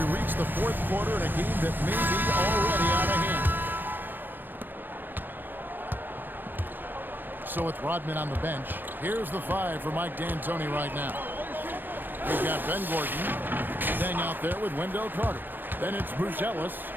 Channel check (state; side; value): late; left; 0.092 ms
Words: reach the fourth quarter in a game that may be already out of hand. So with Rodman on the bench, here's the five for Mike D'Antoni right now. We've got Ben Gordon staying out there with Wendell Carter. Then it's Bruce Ellis,